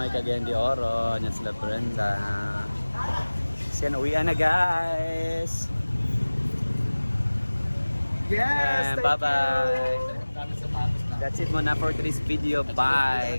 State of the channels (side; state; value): both; inverted; correlation -1.00